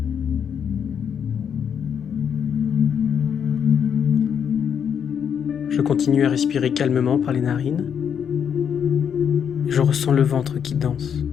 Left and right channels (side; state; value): right; quieter; 7.9 dB